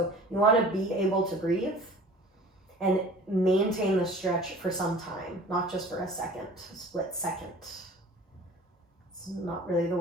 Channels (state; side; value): normal; both; correlation 0.45